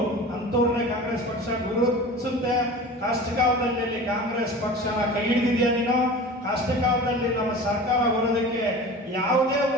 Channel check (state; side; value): normal; both; correlation 0.36